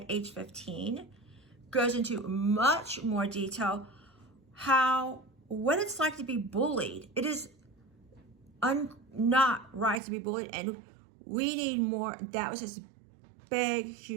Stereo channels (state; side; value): drops out; left; at 10.0 s